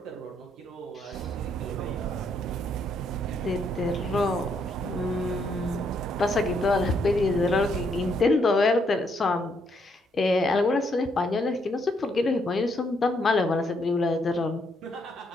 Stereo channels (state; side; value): normal; both; correlation 0.73